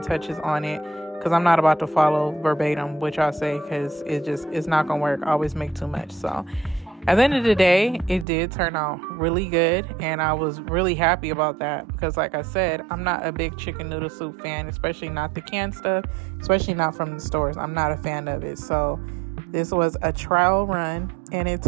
touches on it, because I'm not about to follow verbatim what y'all say, because it's not gonna work. I always make too much. So at the end of the day, it did turn out really good, and I was really happy about that because, like I said, I'm not a big chicken noodle soup fan, especially not the canned stuff, especially not from the stores. I'm not a fan of it. So this was a trial run, and it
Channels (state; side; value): drops out; left; at 8.2 s